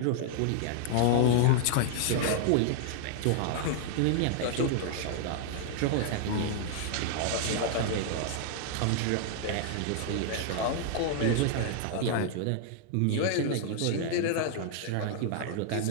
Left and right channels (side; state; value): both; different; correlation -0.01